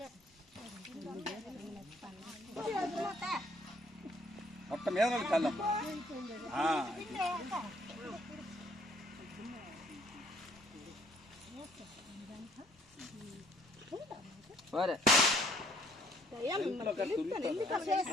మొత్తం మీద చల్లం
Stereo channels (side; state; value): both; normal; correlation 0.63